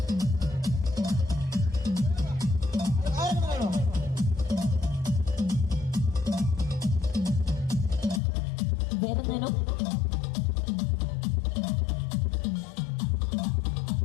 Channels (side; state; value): right; drops out; at 8.2 s